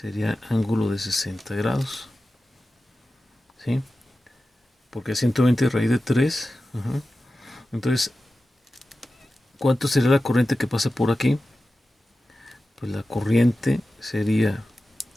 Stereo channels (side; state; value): both; normal; correlation 0.94